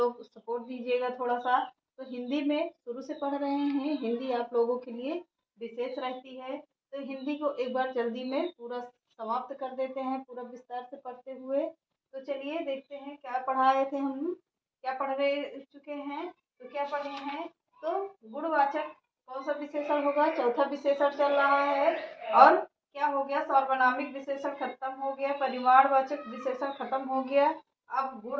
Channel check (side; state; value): both; identical; correlation 1.00